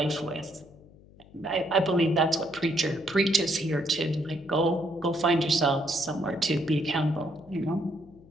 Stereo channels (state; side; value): noise; left; hum, 24 dB below the sound